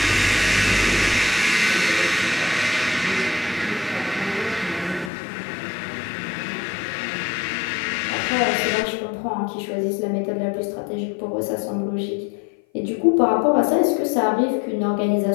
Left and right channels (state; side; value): drops out; right; at 5.1 s